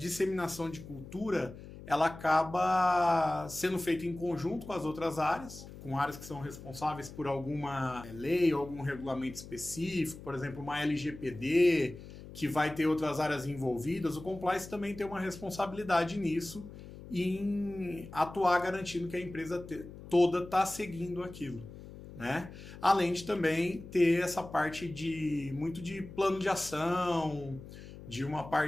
de cultura, ela acaba sendo feita em conjunto com as outras áreas, com áreas que são responsáveis por alguma lei ou algum regulamento específico, por exemplo, uma LGPD, que vai ter outras áreas envolvidas, o compliance também tem uma responsabilidade nisso em atuar garantindo que a empresa toda está seguindo aquilo, né? Além de também ter essa parte muito de plano de ação, de uma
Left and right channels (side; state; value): left; noise; hum, 15 dB below the sound